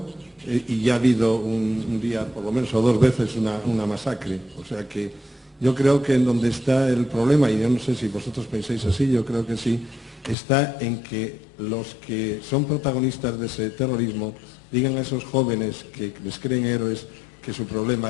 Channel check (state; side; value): drops out; right; at 10.4 s